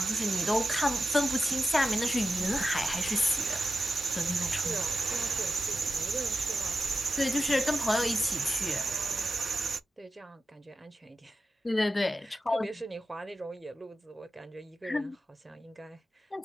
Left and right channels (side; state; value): both; normal; correlation 0.91